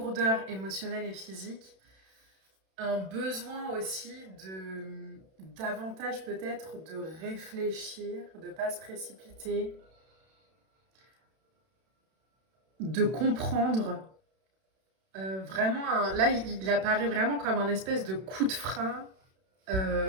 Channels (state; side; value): late; left; 32 ms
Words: émotionnelle et physique, un besoin aussi de davantage peut-être de réfléchir, de ne pas se précipiter, de comprendre. Vraiment, là, il apparaît vraiment comme un espèce de coup de frein